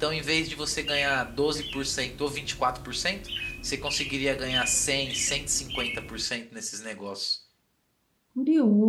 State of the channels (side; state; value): both; identical; correlation 1.00